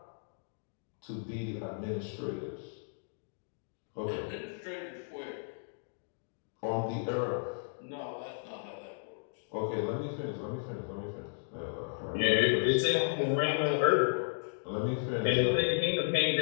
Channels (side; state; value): right; silent; digital silence